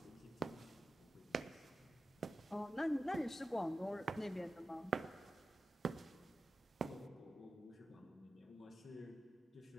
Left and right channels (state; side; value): normal; both; correlation 0.93